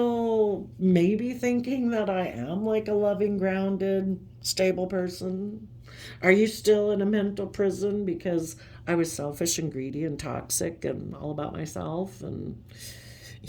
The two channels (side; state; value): both; identical; correlation 1.00